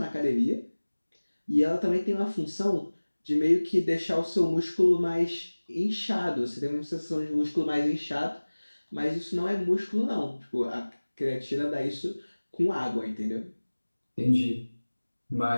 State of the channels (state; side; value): inverted; both; correlation -1.00